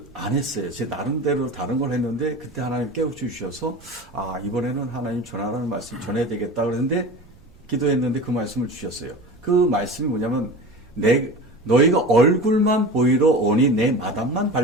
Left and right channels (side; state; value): right; noise; rumble, 26 dB below the sound